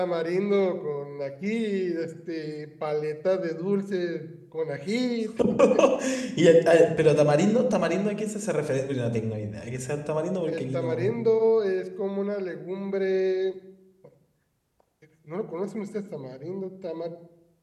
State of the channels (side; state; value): both; identical; correlation 1.00